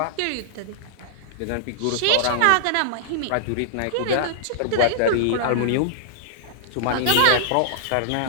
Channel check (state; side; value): different; both; correlation -0.01